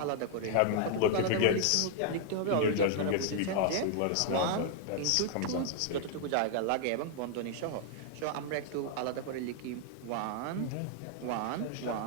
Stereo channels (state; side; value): different; both; correlation 0.00